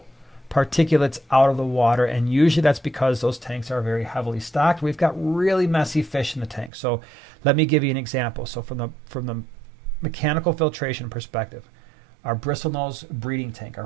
particulates out of the water, and usually that's because those tanks are very heavily stocked. We've got really messy fish in the tank. So let me give you an example. So from the mechanical filtration perspective, our bristlenose breeding tank, our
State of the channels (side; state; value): left; drops out; at 6.7 s